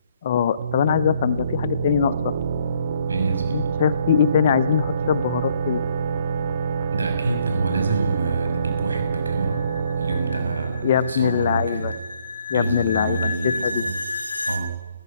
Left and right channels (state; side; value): inverted; both; correlation -0.67